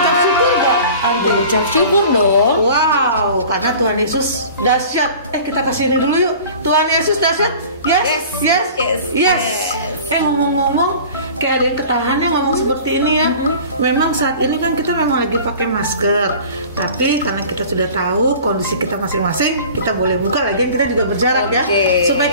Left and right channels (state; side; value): inverted; both; correlation -0.43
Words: syukur gak Aunty? Ucap syukur dong. Wow, karena Tuhan Yesus dahsyat. Kita kasih ini dulu yuk. Tuhan Yesus dahsyat. Yes. Ngomong-ngomong, kayak ada yang ketahan ya ngomong seperti ini ya. Memang saat ini kan kita memang lagi pakai masker, tapi karena kita sudah tahu kondisi kita masing-masing, kita boleh buka lagi, kita juga berjarak ya,